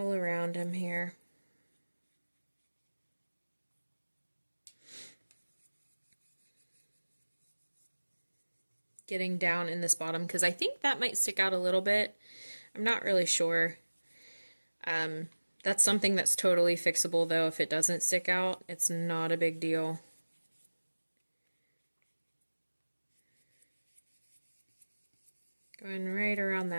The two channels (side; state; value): both; inverted; correlation -1.00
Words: around him here. Getting down in this bottom because I think that might stick out a little bit. I'm not really sure. That's something that's totally fixable though. If it doesn't stick out, it's not a big deal. Going right around